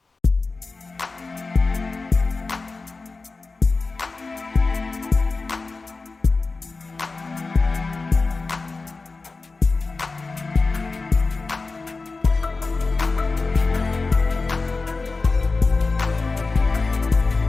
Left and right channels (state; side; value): quieter; right; 3.9 dB